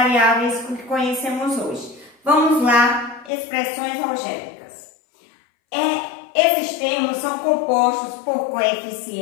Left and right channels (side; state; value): right; drops out; at 3.3 s